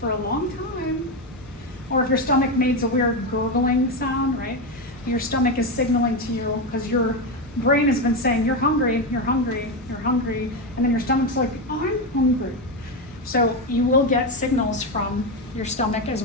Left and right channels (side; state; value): both; normal; correlation 0.11